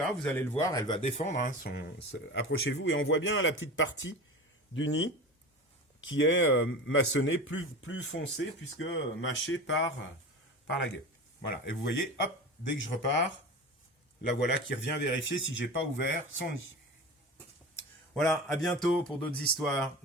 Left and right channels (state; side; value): normal; both; correlation 0.31